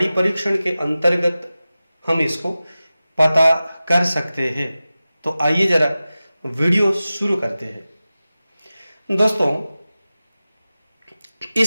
परीक्षण के अंतर्गत हम इसको पता कर सकते हैं। तो आइए जरा वीडियो शुरू करते हैं। दोस्तों,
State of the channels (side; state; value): both; inverted; correlation -0.96